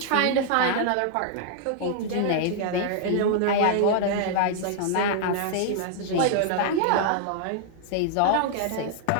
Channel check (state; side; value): different; both; correlation -0.01